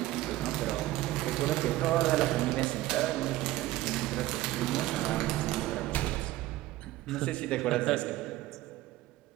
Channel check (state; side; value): quieter; left; 16.5 dB